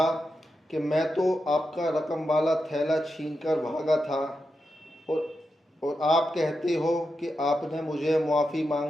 कि मैं तो आपका रकम वाला थैला छीन कर भागा था और आप कहते हो कि आपने मुझे मुआफ़ी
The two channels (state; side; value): normal; both; correlation 0.88